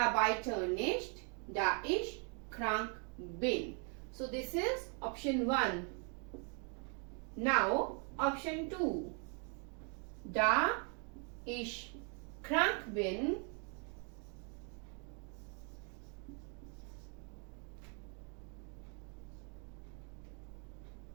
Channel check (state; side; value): quieter; left; 39.4 dB